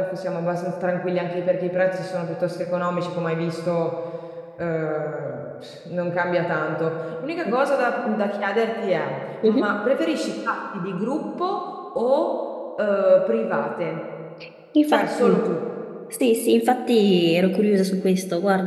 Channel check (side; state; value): both; identical; correlation 1.00